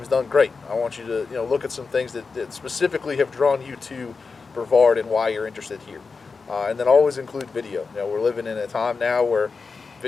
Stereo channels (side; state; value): right; quieter; 4.6 dB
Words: done great. I want you to look at some things that specifically have drawn you to Brevard and why you're interested here. And then always include video. We're living in a time now where